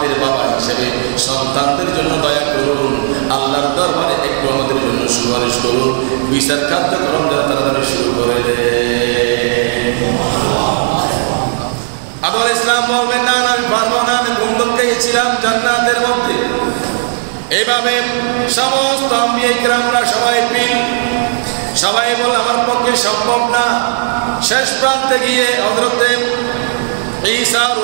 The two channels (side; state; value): left; silent; digital silence